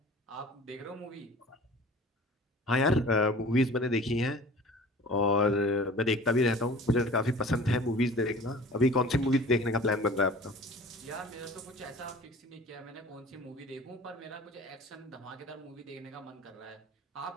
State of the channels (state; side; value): normal; both; correlation 0.44